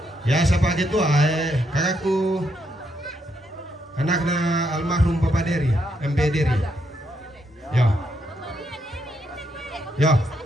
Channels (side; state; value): both; normal; correlation 0.77